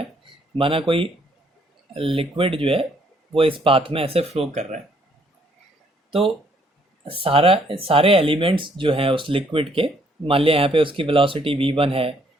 माना कोई लिक्विड जो है वो इस पाथ में ऐसे फ्लो कर रहा है, तो सारे एलिमेंट्स जो हैं उस लिक्विड के, मान लिया यहाँ पे उसकी वेलोसिटी v1 है,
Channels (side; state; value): both; normal; correlation 0.67